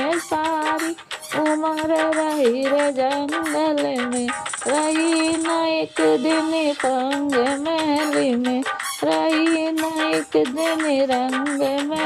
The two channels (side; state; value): both; identical; correlation 1.00